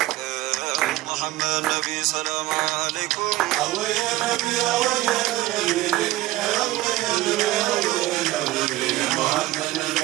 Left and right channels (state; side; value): quieter; left; 17.2 dB